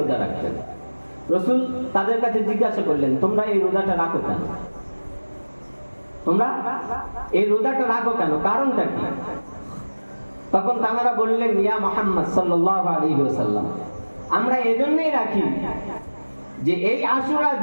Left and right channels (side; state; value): both; inverted; correlation -1.00